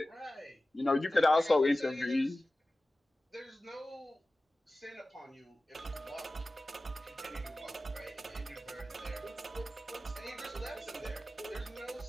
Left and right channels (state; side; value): normal; both; correlation 0.96